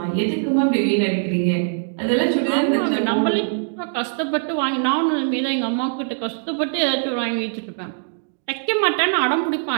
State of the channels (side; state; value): left; silent; digital silence